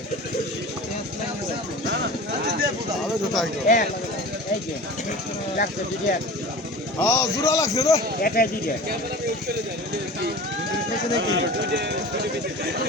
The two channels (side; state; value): both; normal; correlation 0.37